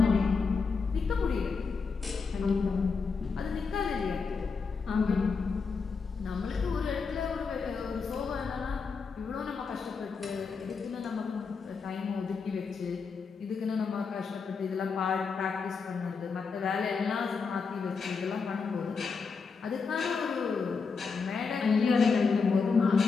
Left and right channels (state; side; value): quieter; right; 5.1 dB